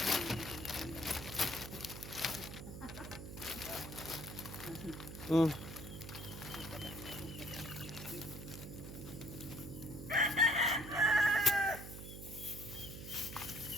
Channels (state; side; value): noise; right; hum, 10 dB below the sound